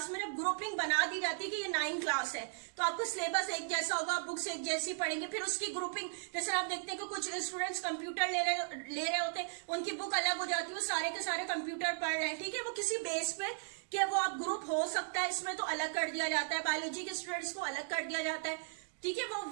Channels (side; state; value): left; silent; digital silence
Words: में जब ग्रुपिंग बना दी जाती है कि ये 9 क्लास है तो आपको सिलेबस एक जैसा होगा, बुक्स एक जैसी पढ़ेंगे, फिर उसकी ग्रुपिंग, जैसे आप देखते हैं कि कुछ स्टूडेंट्स कंप्यूटर ले रहे होते हैं, उनकी बुक अलग हो जाती है, वो सारे के सारे कंप्यूटर पढ़ रहे हैं, ठीक है। वो किसी बेस पे कि वो आप ग्रुप हो सकता है इसमें तो अलग कर दिया जाता है, बायोलॉजी के स्टूडेंट्स को अलग कर दिया जाता है, ठीक है।